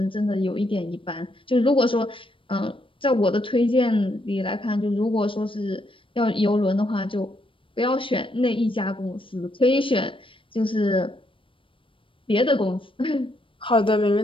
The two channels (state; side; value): late; right; 0.25 ms